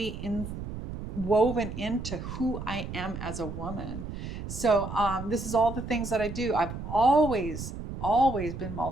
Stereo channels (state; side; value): noise; right; rumble, 8 dB below the sound